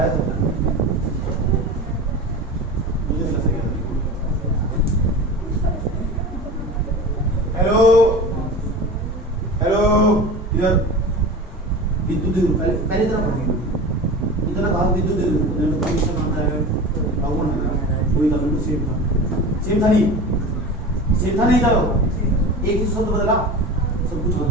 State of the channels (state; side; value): normal; both; correlation 0.32